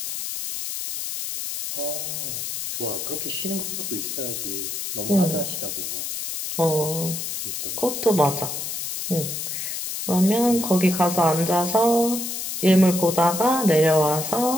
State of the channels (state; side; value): noise; left; hiss, 5 dB below the sound